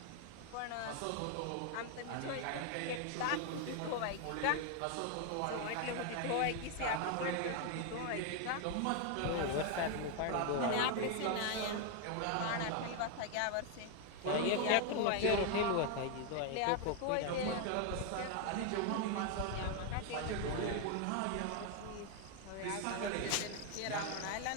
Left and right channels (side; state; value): both; different; correlation 0.01